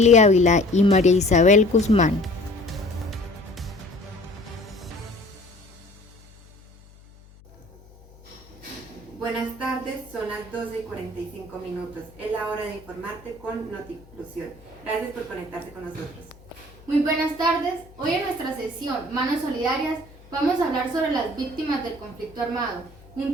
Ávila y María Isabel Guzmán. Buenas tardes, son las 12:45. Es la hora de informarte con Noti Inclusión. Gracias por conectarse con nosotros. Muy buenas tardes. Hoy en nuestra sesión Manos Solidarias vamos a hablar sobre las víctimas del conflicto armado,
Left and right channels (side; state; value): left; noise; hum, 24 dB below the sound